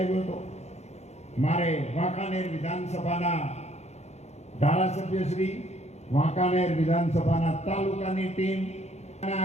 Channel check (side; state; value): right; late; 0.32 ms